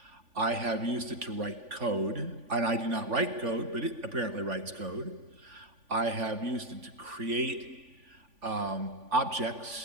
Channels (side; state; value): left; late; 3.5 ms